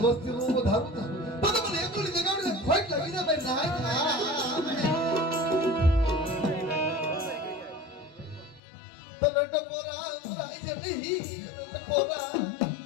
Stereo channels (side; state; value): right; drops out; at 8.6 s